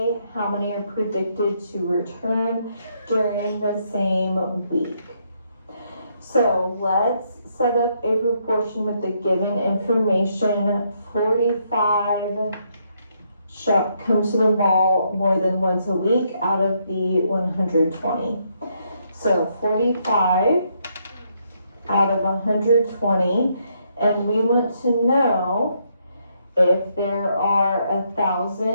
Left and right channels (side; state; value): both; inverted; correlation -0.75